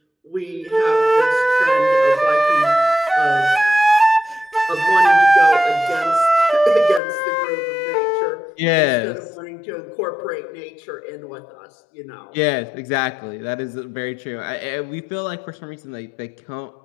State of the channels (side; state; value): right; drops out; at 7.0 s